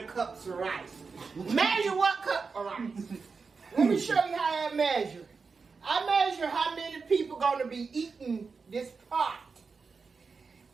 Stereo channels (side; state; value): left; quieter; 4.9 dB